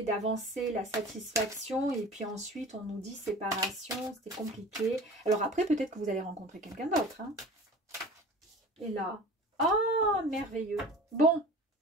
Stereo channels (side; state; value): both; normal; correlation 0.40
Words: d'avancer, la satisfaction. Et puis ensuite, on nous dit séparation, c'était compliqué. Alors après, peut-être que vous allez rencontrer quelqu'un d'autre. Hein. Et là, oh, merveilleux. Bon,